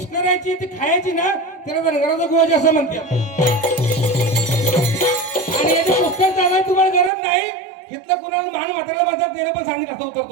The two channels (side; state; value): left; drops out; at 7.1 s